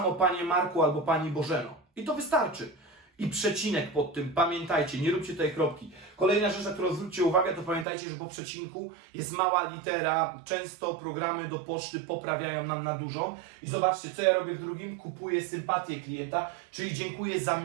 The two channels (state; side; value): drops out; left; at 7.9 s